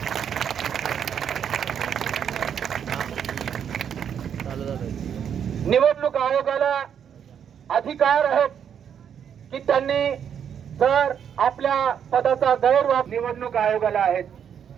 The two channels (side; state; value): left; quieter; 8.3 dB